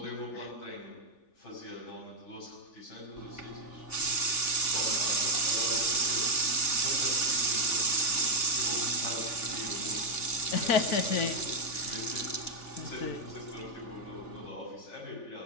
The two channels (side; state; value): right; late; 3.4 ms